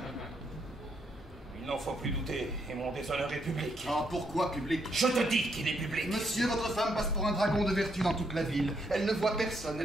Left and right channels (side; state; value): both; normal; correlation 0.75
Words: Il n'en faut plus douter, et mon déshonneur est public. Ah, pourquoi public? Je te dis qu'il est public. Monsieur, votre femme passe pour un dragon de vertu dans toute la ville. Elle ne voit personne,